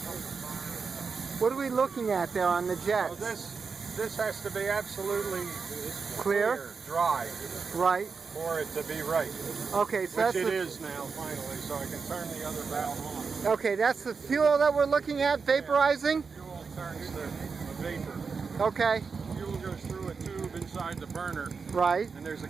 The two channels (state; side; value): quieter; left; 5.2 dB